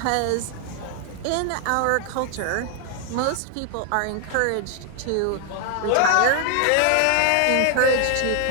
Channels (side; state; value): both; different; correlation 0.00